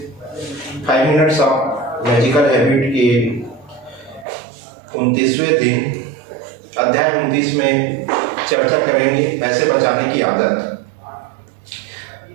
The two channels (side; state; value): left; drops out; at 4.2 s